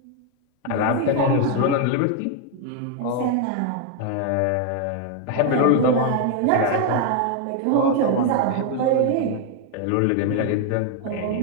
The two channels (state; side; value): different; both; correlation 0.00